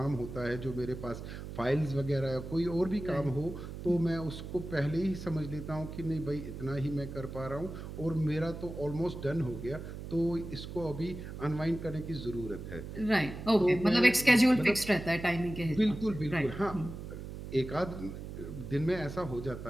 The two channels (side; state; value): right; noise; hum, 9 dB below the sound